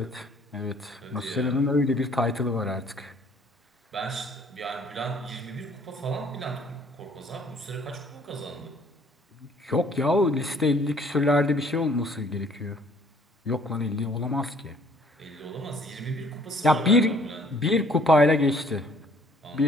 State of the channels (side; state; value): both; normal; correlation 0.59